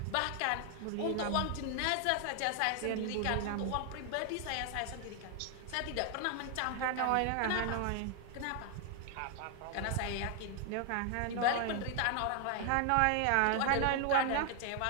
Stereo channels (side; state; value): both; different; correlation 0.00